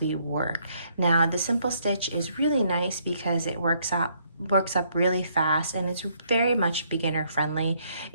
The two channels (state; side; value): inverted; both; correlation -0.69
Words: we work. Now, the Simple Stitch is really nice because it works up really fast, and it's very much beginner friendly.